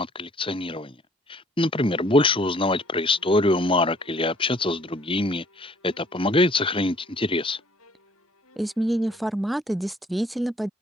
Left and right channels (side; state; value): both; normal; correlation 0.59